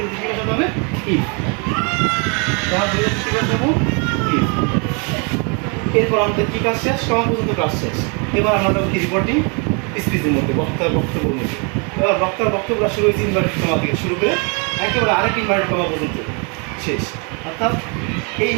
কি বসাতে হবে? ইফ। কমার পরিবর্তে কি বসাবো? ইফ। এরপর আমাদের কি কাজ শেষ? কমা পর্যন্ত কাজ শেষ। এবার আমরা যাবো কি? রিপোর্টিং স্পিচের মধ্যে, বক্তার বক্তব্যের মধ্যে। এবার বক্তার বক্তব্যটা শুরু হয়েছে ইনভার্টেড কমা থেকে শুরু করে একেবারে আরেক ইনভার্টেড কমা পর্যন্ত শেষ, অর্থাৎ এই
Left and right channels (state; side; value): quieter; left; 34.6 dB